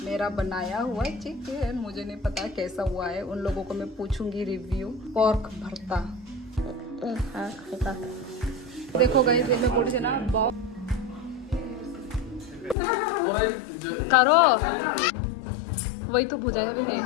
मेरा बनाया हुआ चिकन, मुझे नहीं पता कैसा हुआ है, उन लोगों को मैं पूछूंगी रिव्यू। पॉर्क भरता देखो गाइस, ये मैं बोली थी ना करो, वही तो बुझाया भी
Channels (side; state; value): right; drops out; at 12.8 s